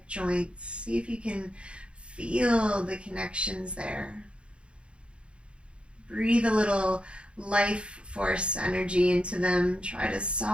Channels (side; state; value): left; late; 0.058 ms